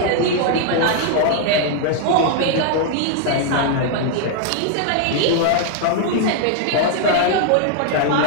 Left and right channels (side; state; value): both; different; correlation 0.00